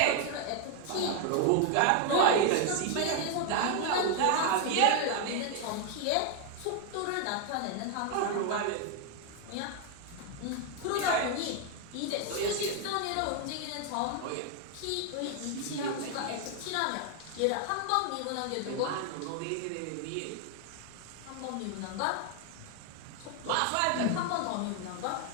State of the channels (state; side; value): different; both; correlation 0.00